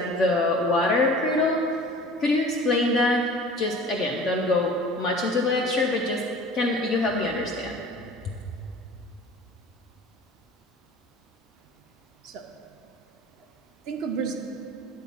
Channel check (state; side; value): normal; both; correlation 0.43